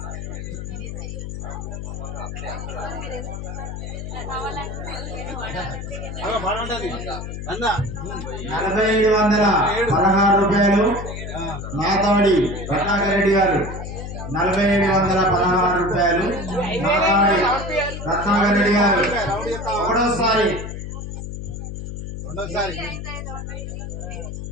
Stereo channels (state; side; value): noise; left; hum, 7 dB below the sound